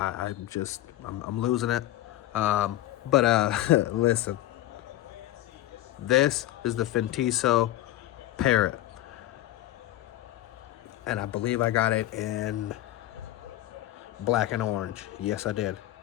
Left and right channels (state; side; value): quieter; right; 14.7 dB